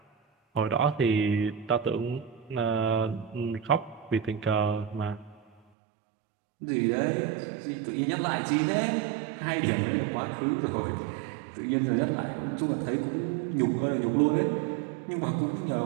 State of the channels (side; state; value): left; drops out; at 5.6 s